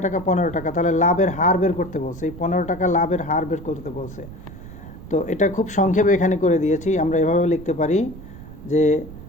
টাকা? 15 টাকা। তাহলে লাভের হার বের করতে বলছে, এই 15 টাকা লাভের হার বের করতে বলছে। তো এটা খুব সংক্ষেপে এখানে করে দিয়েছি। আমরা এভাবে লিখতে পারি যে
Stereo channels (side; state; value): right; noise; rumble, 15 dB below the sound